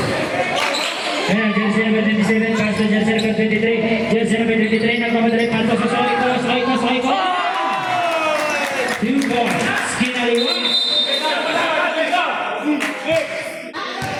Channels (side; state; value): both; identical; correlation 1.00